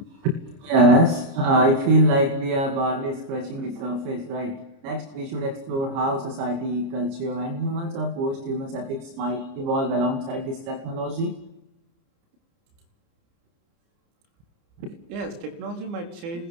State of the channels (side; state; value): left; late; 29 ms